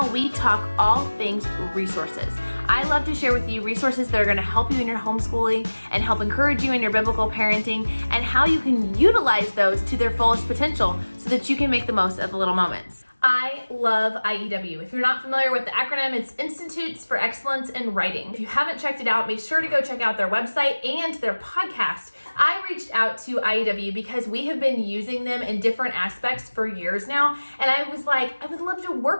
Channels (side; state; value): both; inverted; correlation -1.00